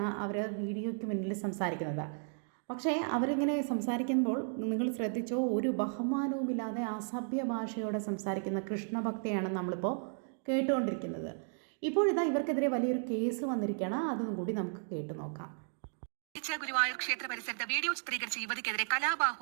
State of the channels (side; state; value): left; silent; 55 dB below the other